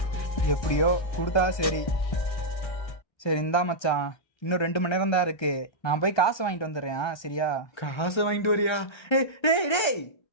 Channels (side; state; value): right; late; 1.3 ms